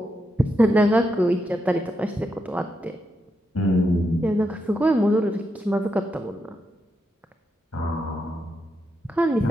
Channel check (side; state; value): both; normal; correlation 0.83